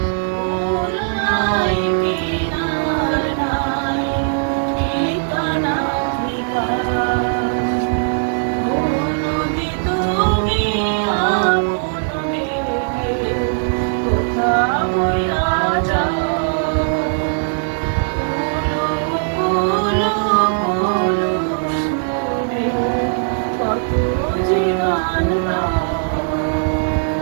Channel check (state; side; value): silent; left; digital silence